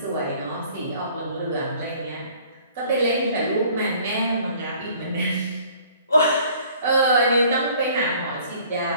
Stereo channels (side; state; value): both; inverted; correlation -0.55